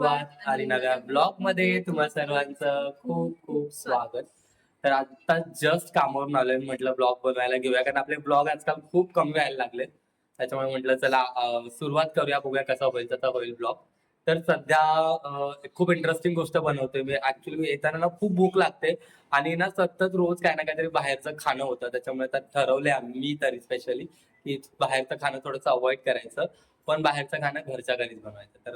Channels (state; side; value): identical; both; correlation 1.00